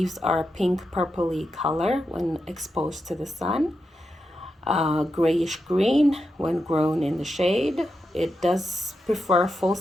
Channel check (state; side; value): normal; both; correlation 0.87